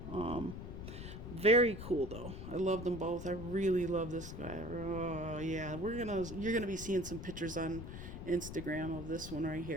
Very cool though. I love them both. I really love this guy. Oh yeah, you're gonna be seeing some pictures on Instagram of this one right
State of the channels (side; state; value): left; noise; rumble, 9 dB below the sound